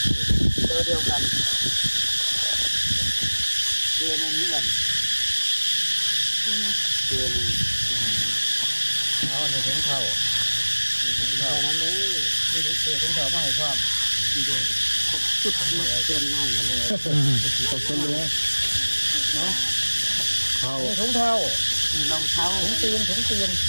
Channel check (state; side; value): inverted; both; correlation -1.00